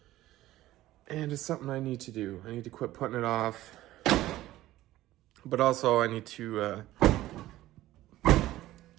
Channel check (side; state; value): left; quieter; 15.5 dB